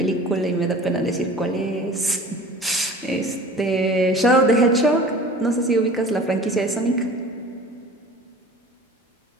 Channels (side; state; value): both; normal; correlation 0.42